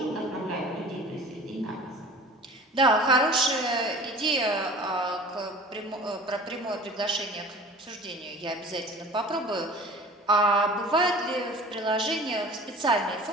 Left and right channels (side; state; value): both; normal; correlation 0.42